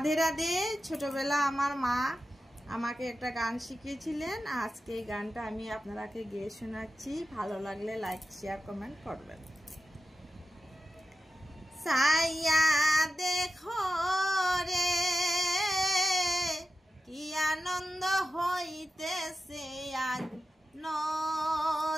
রাধে। ছোটবেলা আমার মা আমাকে একটা গান শিখিয়েছিলেন। আজকে এই গানটা আমি আপনাদেরকে গেয়ে শোনাচ্ছি। ভালো লাগলে লাইক শেয়ার কমেন্ট করবেন। সাইয়া দেখো রে কি আনন্দ হইতেছে আজ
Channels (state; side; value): normal; both; correlation 0.91